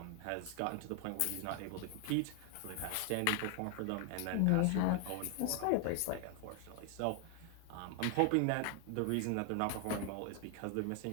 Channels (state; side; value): different; both; correlation 0.00